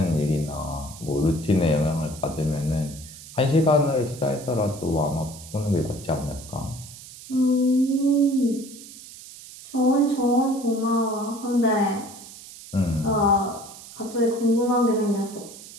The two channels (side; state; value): right; noise; hiss, 16 dB below the sound